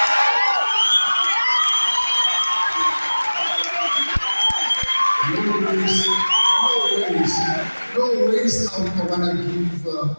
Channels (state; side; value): inverted; both; correlation -1.00